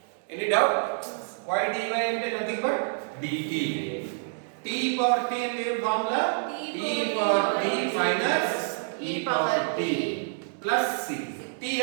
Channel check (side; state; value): left; silent; digital silence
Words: Any doubt? y dy అంటే nothing but dt. t e⁻t అంటే ఏం formula? t e⁻t plus c. t